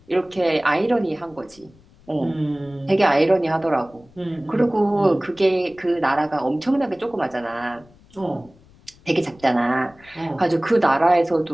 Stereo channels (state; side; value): noise; left; rumble, 27 dB below the sound